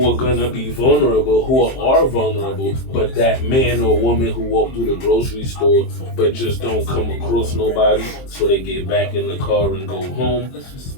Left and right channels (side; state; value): right; late; 23 ms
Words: are gonna be vulnerable, who are vulnerable, but that man or woman who walked through the grocery store but just don't come across nobody, so they get back in the car and go home,